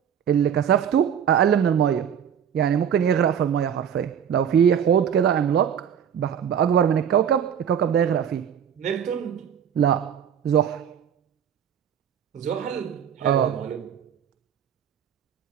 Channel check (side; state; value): left; quieter; 8.4 dB